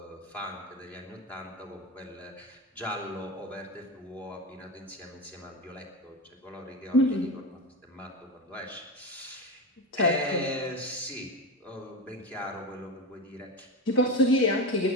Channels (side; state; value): both; normal; correlation 0.20